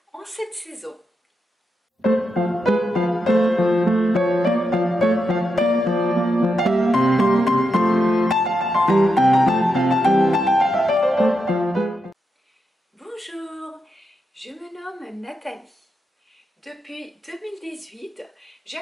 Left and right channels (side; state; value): both; normal; correlation 0.85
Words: en cette saison. Bonjour, je me nomme Nathalie. Depuis 2018,